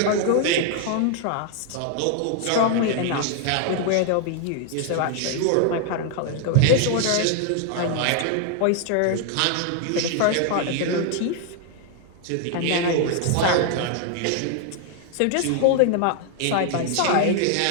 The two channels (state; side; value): different; both; correlation 0.00